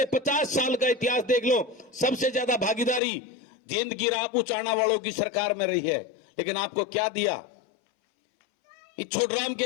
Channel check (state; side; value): drops out; right; at 3.0 s